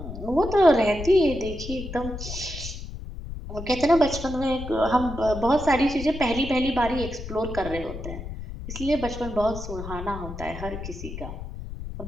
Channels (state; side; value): noise; left; rumble, 9 dB below the sound